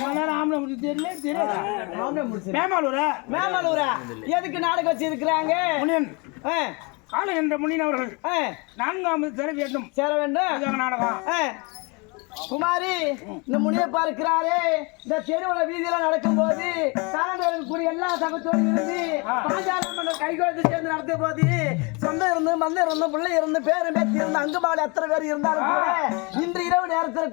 மேமாலூரா எதுக்கு நாடகம் வச்சு இருக்கிறாங்க காலம் என்ற முனியன் அவர்கள் 4ஆவது சேர வேண்டும் நாடகம் குமாரி இந்த முனியப்பா இருக்கிறாரே இந்த தெருவுல வீதியில நடக்கும் போது கூடிய எல்லா சகத்தோடு இருந்து பாஞ்சாலம் கைகோத்து சேர்ந்து நடத்தும் போது சொந்தம் இருந்து மந்தம் இருந்து பிள்ளை இருந்து பேரும் பேத்தி இருந்து அங்குபாடு எத்தனை பேர் இருந்தாலும் கூட இன்று இரவு நேரத்துல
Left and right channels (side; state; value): right; quieter; 29.9 dB